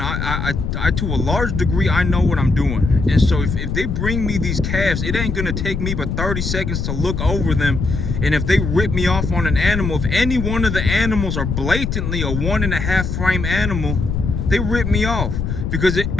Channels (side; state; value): left; noise; rumble, 3 dB below the sound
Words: to a large degree I know what I'm doing. And so if they bring me these calves, it ain't gonna take me but 30 seconds to look over them. And if they rip me off on an animal, if any one of the animals are blatantly a 1.5 frame animal, they rip me off. Because